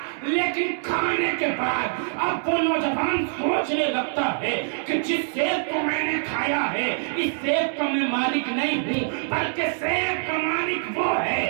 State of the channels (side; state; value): left; silent; 62 dB below the other